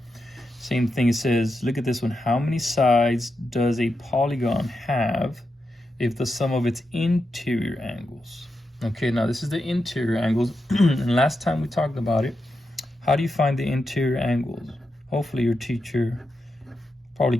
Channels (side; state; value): both; normal; correlation 0.87